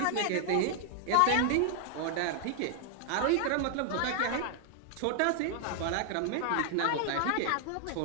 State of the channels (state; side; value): different; both; correlation 0.00